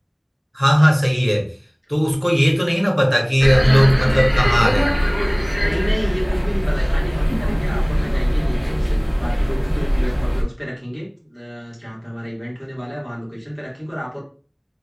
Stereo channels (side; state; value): both; identical; correlation 1.00